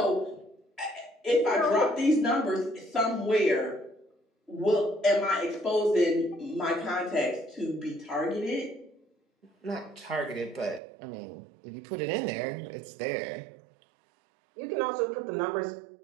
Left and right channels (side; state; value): left; drops out; at 10.8 s